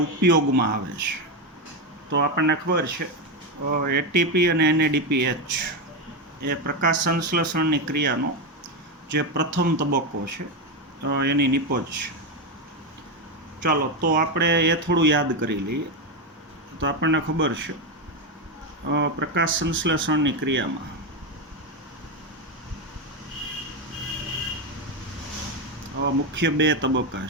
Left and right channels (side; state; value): both; normal; correlation 0.10